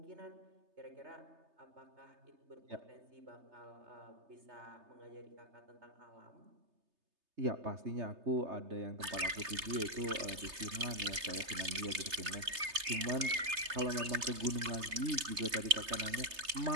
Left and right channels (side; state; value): left; late; 3.3 ms